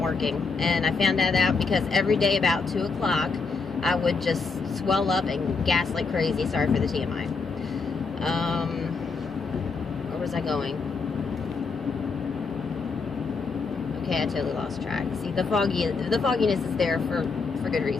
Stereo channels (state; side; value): quieter; right; 4.6 dB